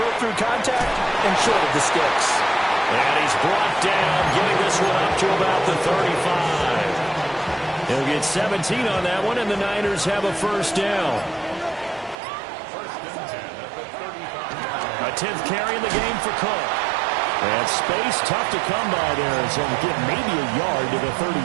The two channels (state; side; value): drops out; left; at 12.2 s